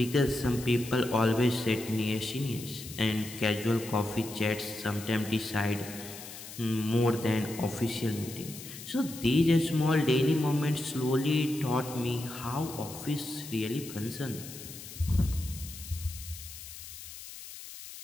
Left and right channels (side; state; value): left; noise; hiss, 13 dB below the sound